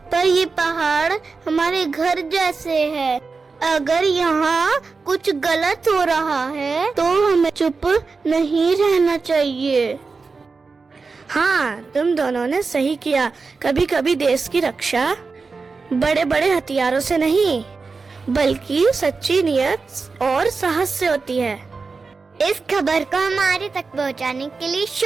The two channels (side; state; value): left; quieter; 4.4 dB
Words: पर ये पहाड़ हमारे घर जैसे है। अगर यहाँ कुछ गलत हो रहा है तो हमें चुप नहीं रहना चाहिए। हाँ, तुम दोनों ने सही किया। कभी कभी देश की रक्षा बड़े बड़े हथियारों से नहीं, बल्कि सच्ची नियत और साहस से होती है। इस खबर को हमारे तक पहुंचाने के लिए